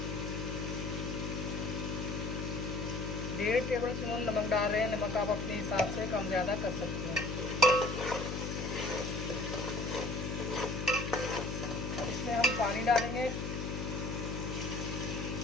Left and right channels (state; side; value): noise; left; hum, 3 dB below the sound